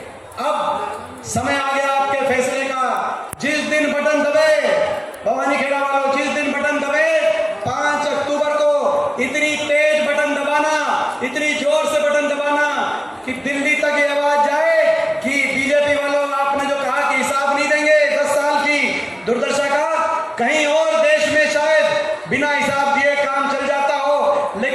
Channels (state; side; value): identical; both; correlation 1.00